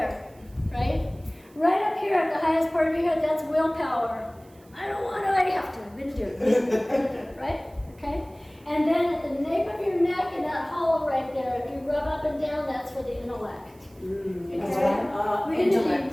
right? Right up here at the highest part of your head, that's willpower. I don't want to, I have to, I'm going to do it, right? Okay? And then at the nape of your neck and that hollow right there, if you rub up and down, that's for the intellect. Okay?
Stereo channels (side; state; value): right; noise; hiss, 30 dB below the sound